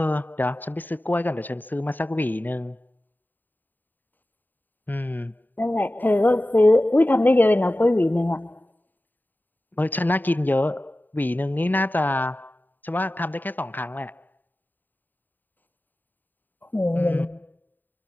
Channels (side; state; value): right; late; 0.089 ms